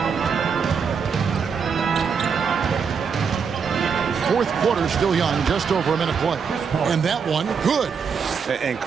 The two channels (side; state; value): left; quieter; 6.2 dB